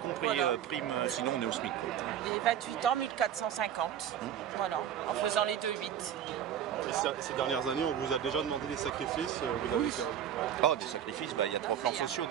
Voilà. prime, sinon on est au SMIC, quoi. Et 28 ans, 1450. Voilà, en faisant les 2-8. Et ces dernières années, on vous a déjà demandé des sacrifices, vous avez perdu. Oh, des sacrifices, il y a 3 plans sociaux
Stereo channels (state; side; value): quieter; left; 9.8 dB